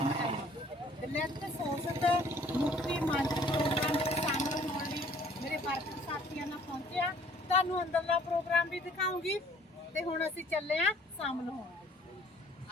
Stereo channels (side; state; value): both; normal; correlation 0.56